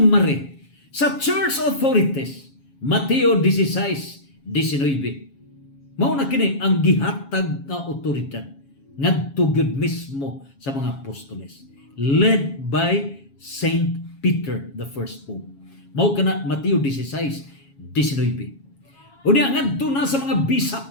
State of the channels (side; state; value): right; late; 7.3 ms